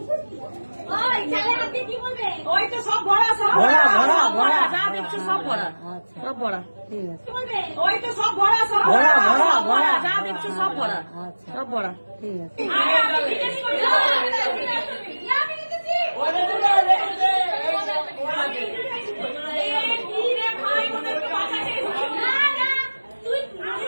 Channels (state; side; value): inverted; both; correlation -1.00